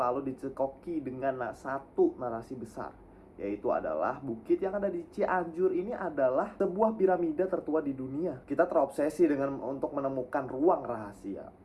dicekoki dengan satu narasi besar, yaitu adalah bukit yang ada di Cianjur ini adalah sebuah piramida tertua di dunia. Kita terobsesi dengan untuk menemukan ruang rahasia,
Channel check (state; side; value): identical; both; correlation 1.00